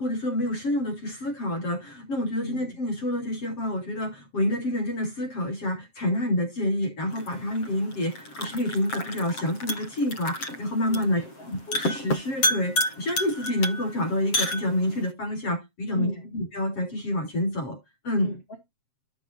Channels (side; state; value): right; late; 7.5 ms